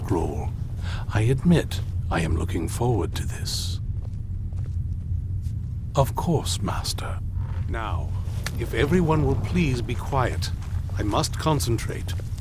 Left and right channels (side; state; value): both; identical; correlation 1.00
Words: I admit I am looking forward to this. Of course, Master. Now, if everyone will please be quiet, I must concentrate.